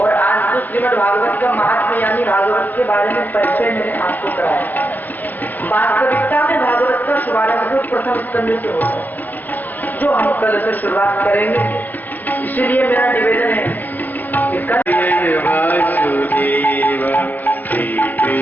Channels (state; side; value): late; right; 0.084 ms